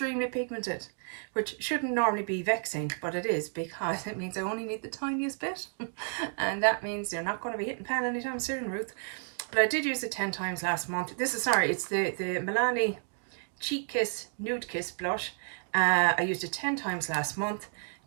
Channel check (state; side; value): silent; left; 57 dB below the other